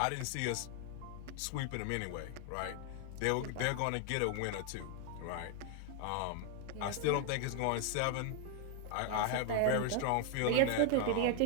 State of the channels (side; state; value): both; different; correlation 0.00